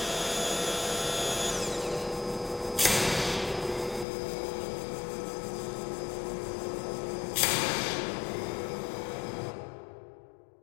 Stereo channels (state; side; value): drops out; right; at 4.0 s